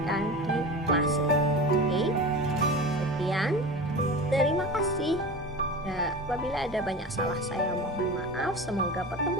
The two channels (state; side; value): normal; both; correlation 0.31